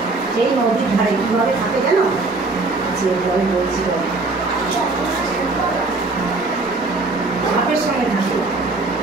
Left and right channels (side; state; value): left; quieter; 3.4 dB